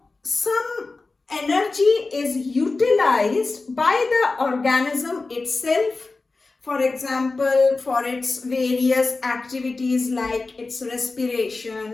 some energy is utilized by the organism itself. For example, for its various activities like its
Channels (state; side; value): quieter; right; 3.7 dB